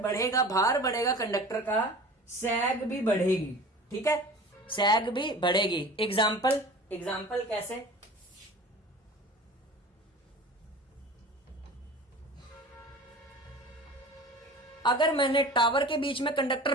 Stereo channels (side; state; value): both; normal; correlation 0.39